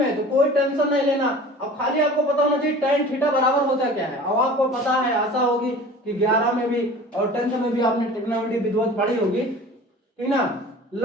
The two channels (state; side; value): normal; both; correlation 0.41